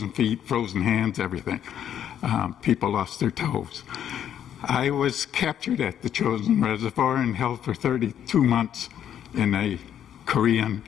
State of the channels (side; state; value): right; quieter; 9.8 dB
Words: feet, frozen hands, everything. People lost their toes. I was captured at the Chosin Reservoir and held for 32 months in a